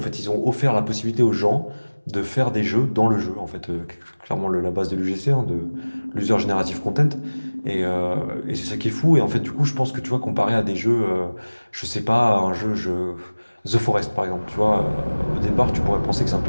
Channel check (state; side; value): inverted; both; correlation -1.00